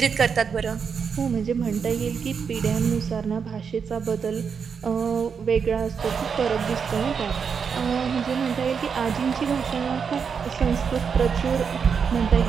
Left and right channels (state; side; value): quieter; left; 6.3 dB